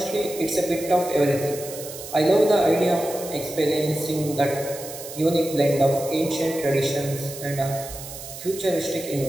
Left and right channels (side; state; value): right; noise; hiss, 12 dB below the sound